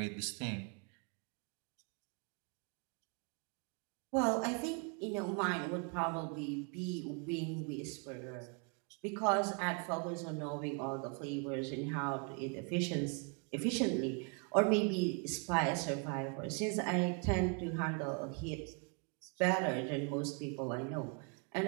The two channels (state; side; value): quieter; left; 36.2 dB